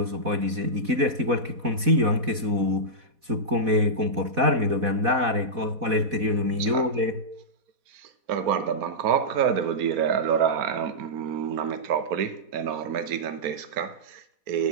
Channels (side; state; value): left; late; 4.1 ms